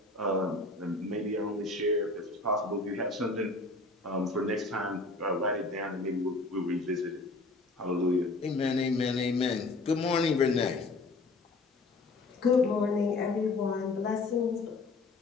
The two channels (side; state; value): right; quieter; 3.3 dB